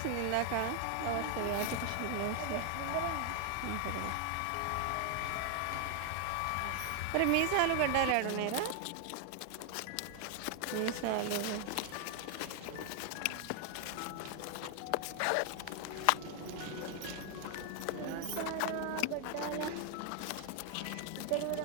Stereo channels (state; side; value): different; both; correlation 0.00